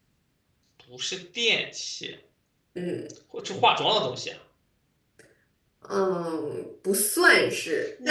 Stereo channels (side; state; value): both; identical; correlation 1.00